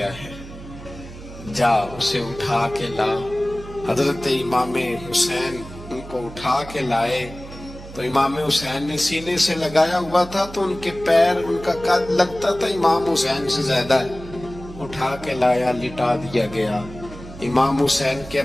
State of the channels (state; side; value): noise; right; hum, 15 dB below the sound